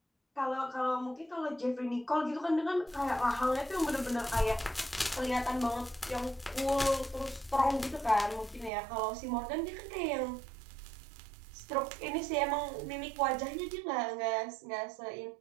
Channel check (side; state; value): left; drops out; at 8.7 s